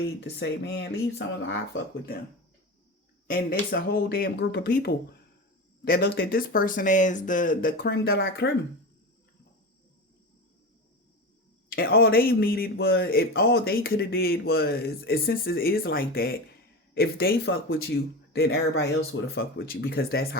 to say, man, leave someone, I fuck with them. And it's a whole damn group of people that looked at this person as the creme de la creme. And all they needed was, if all they could have did was, since it is like that, if they fuck with you, then everybody else would have fucked with you, because that's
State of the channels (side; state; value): both; normal; correlation 0.25